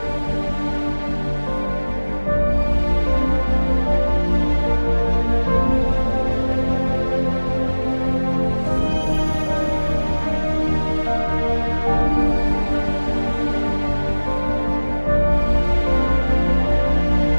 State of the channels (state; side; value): inverted; both; correlation -1.00